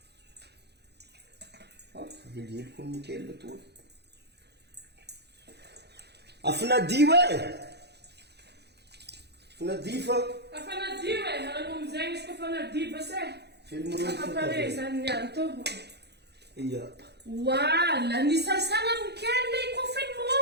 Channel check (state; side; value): late; left; 0.48 ms